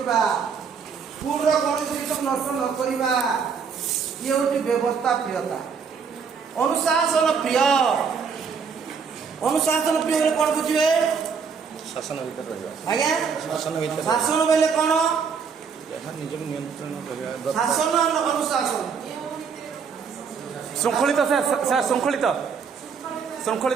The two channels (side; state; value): left; quieter; 6.1 dB